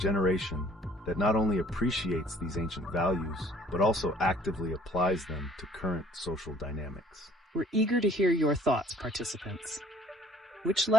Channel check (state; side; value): normal; both; correlation 0.57